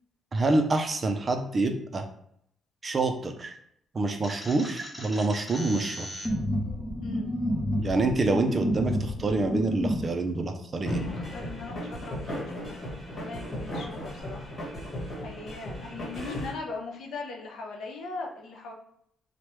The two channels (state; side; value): normal; both; correlation 0.80